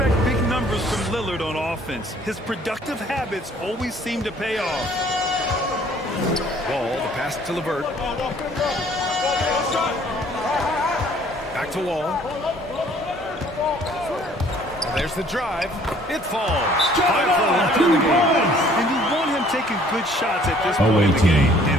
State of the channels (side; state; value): both; normal; correlation 0.58